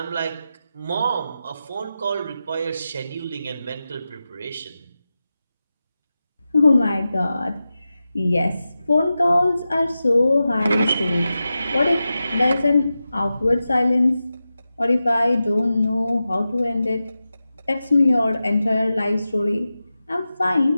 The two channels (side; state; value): both; inverted; correlation -0.93